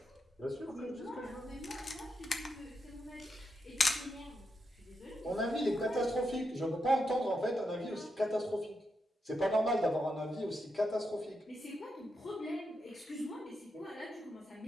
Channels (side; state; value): both; normal; correlation 0.84